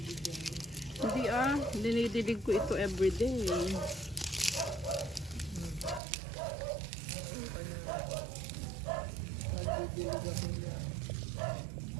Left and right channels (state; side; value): drops out; left; at 6.0 s